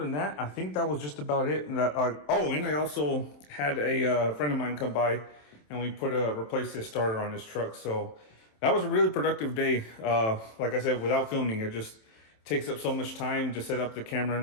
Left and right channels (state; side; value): late; right; 27 ms